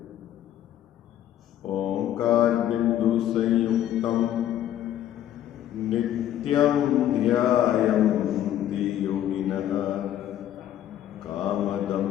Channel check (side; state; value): right; quieter; 11.6 dB